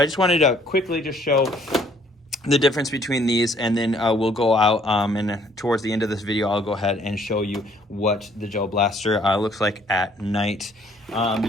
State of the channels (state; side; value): normal; both; correlation 0.61